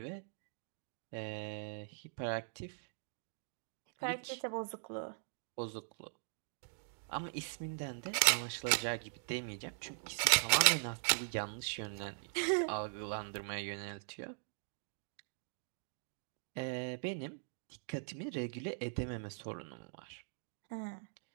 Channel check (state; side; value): silent; left; digital silence